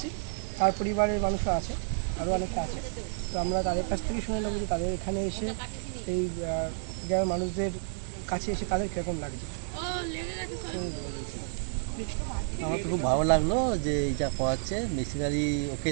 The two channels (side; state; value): left; silent; digital silence